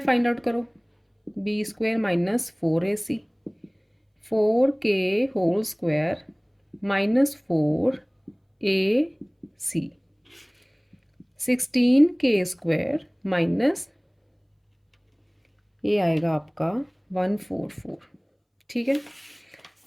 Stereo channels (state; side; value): identical; both; correlation 1.00